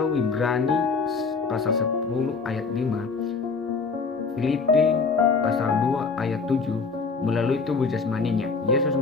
Ibrani pasal 10 ayat 5, Filipi pasal 2 ayat 7, melalui tubuh jasmaninya, Yesus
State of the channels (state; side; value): quieter; right; 4.7 dB